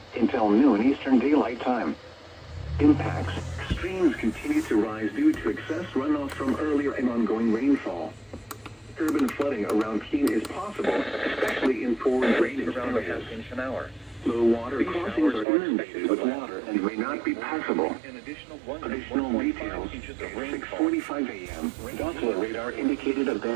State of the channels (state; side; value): drops out; left; at 15.5 s